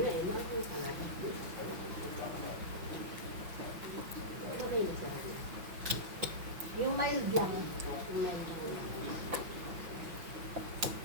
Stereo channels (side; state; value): left; late; 6.0 ms